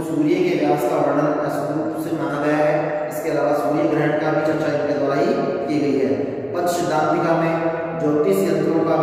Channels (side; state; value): both; identical; correlation 1.00